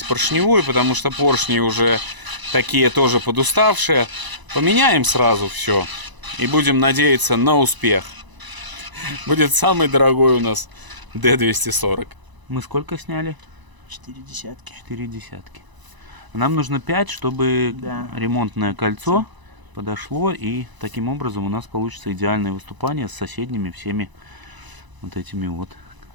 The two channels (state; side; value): late; left; 1.0 ms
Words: поршневую, потому что поршни уже такие тоже подуставшие. Поменяем сразу все и будем надеяться на успех. Будет самый дорогой у нас D240. Мы сколько сняли? 4 десятки. 4 десятки. Нам нужно 5, чтобы Да. ремонтное кольцо подошло, и таким образом у нас получится идеальное выступание с соседними всеми вот этими вот